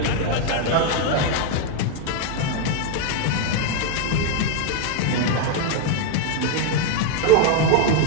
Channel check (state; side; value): different; both; correlation 0.01